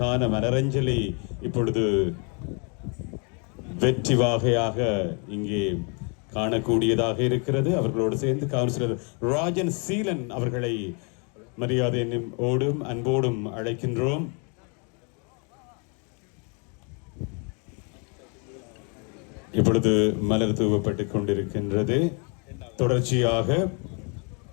மலரஞ்சலி இப்பொழுது வெற்றி வாகையாக இங்கே காணக்கூடியதாக இருக்கிறது. அவர்களோடு சேர்ந்து கவுன்சிலர் ராஜன் சீலன் அவர்களை மரியாதையோடும் அன்போடும் அழைக்கின்றோம். இப்பொழுது மலர் தூவப்பட்டுக் கொண்டிருக்கின்றது. தொடர்ச்சியாக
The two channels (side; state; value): right; quieter; 35.8 dB